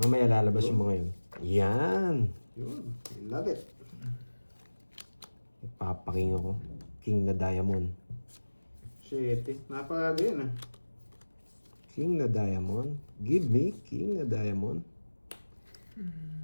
lalabas yung mga yun. Yan. Yun. I love it. Papaking ako. King na diamond. Shit eh. Napakaga yun ah. King na diamond. Give me king na diamond.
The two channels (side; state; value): both; inverted; correlation -1.00